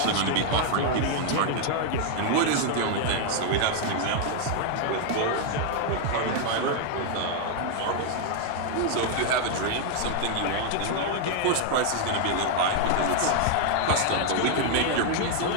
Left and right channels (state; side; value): different; both; correlation 0.00